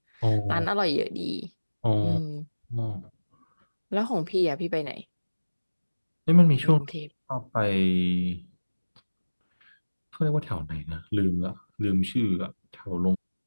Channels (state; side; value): inverted; both; correlation -1.00